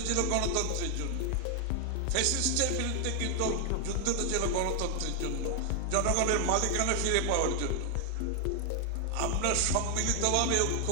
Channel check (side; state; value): both; different; correlation 0.00